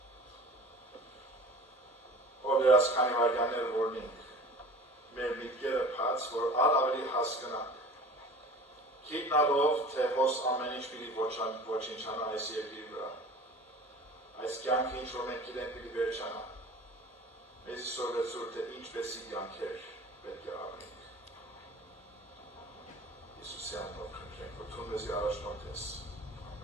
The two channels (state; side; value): normal; both; correlation 0.40